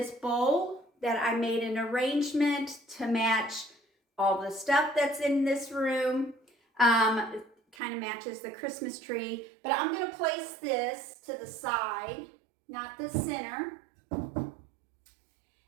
bowl that I made an arrangement to match all the stuff that's in this room. Kind of matches the Christmas tree, but I'm going to place this to the side, not the center.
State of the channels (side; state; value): left; drops out; at 7.8 s